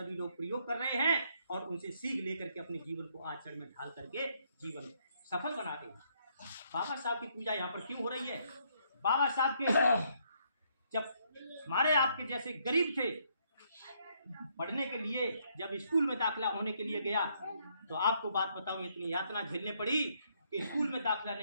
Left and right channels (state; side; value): inverted; both; correlation -0.71